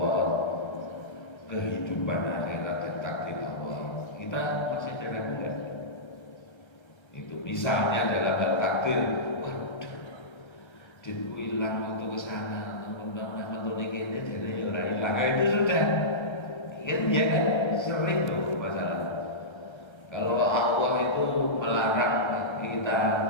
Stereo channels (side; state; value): right; late; 1.3 ms